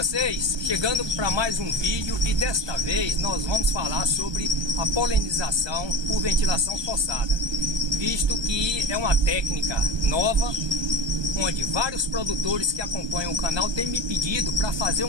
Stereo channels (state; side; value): late; left; 1.2 ms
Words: Chegando para mais um vídeo e desta vez nós vamos falar sobre a polinização por ventilação forçada, visto que é uma técnica nova, onde vários produtores que acompanham o canal têm me pedido para fazer